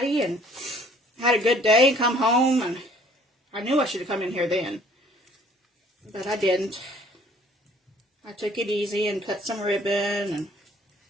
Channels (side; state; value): both; normal; correlation 0.57